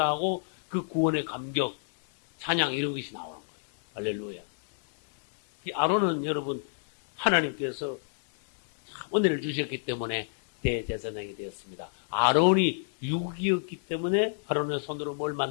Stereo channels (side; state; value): right; silent; 59 dB below the other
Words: 그 구원의 감격, 찬양 이런 것이 나오는 거예요. 할렐루야. 이 아론은 여러분, 하나님께서 은혜를 주셨기 때문에 대제사장이 되었습니다. 아론이 육이었기 때문에 아론의 손으로 뭘